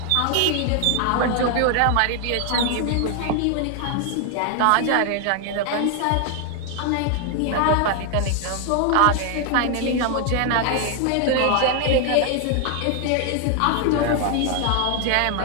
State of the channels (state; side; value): different; both; correlation 0.00